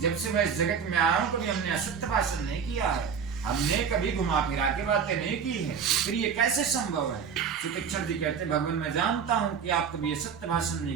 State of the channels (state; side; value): quieter; left; 6.8 dB